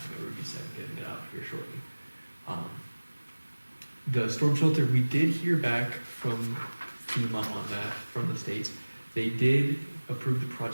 a review set and getting it out here shortly. The storm shelter, we did hear back from FEMA on that, from the state. They did approve the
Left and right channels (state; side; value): inverted; both; correlation -1.00